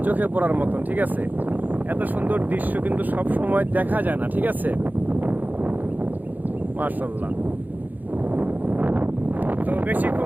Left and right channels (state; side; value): late; left; 0.083 ms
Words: চোখে পড়ার মতন, ঠিক আছে। এত সুন্দর দৃশ্য কিন্তু সব সময় দেখা যায় না, ঠিক আছে। মাশাআল্লাহ। তো